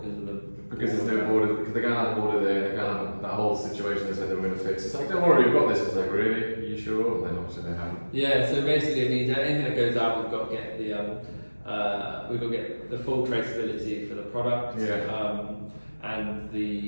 because there's no border, because they're going to have a border there, they're going to have that whole situation they said they were going to fix. It's like, don't worry, we've got this. It's like, really? Are you sure? And then obviously they haven't. Yeah, so basically it means anything that goes out, we've got to get the full traceability for the product. Yeah. and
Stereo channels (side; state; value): both; inverted; correlation -1.00